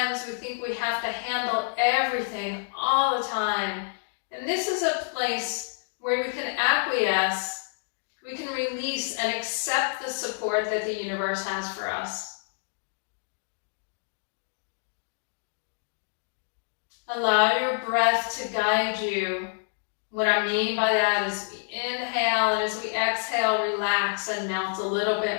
we think we have to handle everything all the time. And this is a place where we can acquiesce, we can release and accept the support that the universe has for us. Allow your breath to guide you. What I mean by that is we inhale, and as we exhale, relax and melt a little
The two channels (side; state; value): right; silent; digital silence